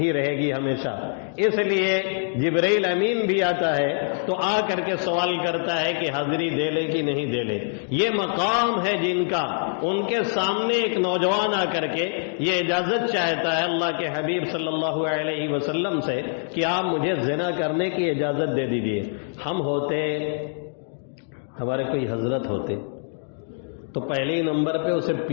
رہے گی ہمیشہ. اس لیے جبرائیل امین بھی آتا ہے تو آ کر کے سوال کرتا ہے کہ حاضری دے لے کہ نہیں دے لے. یہ مقام ہے جن کا، ان کے سامنے ایک نوجوان آ کر کے یہ اجازت چاہتا ہے اللہ کے حبیب صلی اللہ علیہ وسلم سے کہ آپ مجھے زنا کرنے کی اجازت دے دیجیے. ہم ہوتے، ہمارے کوئی حضرت ہوتے تو پہلے ہی نمبر پہ اسے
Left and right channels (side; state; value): right; silent; digital silence